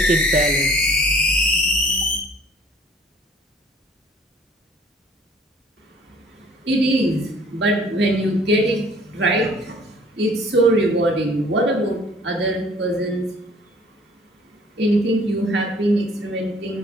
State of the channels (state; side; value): normal; both; correlation 0.55